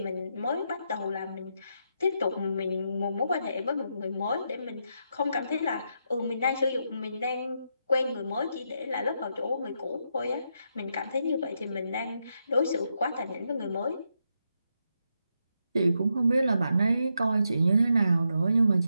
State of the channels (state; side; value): inverted; both; correlation -0.82